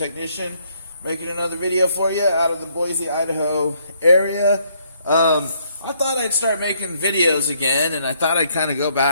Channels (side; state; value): both; inverted; correlation -0.69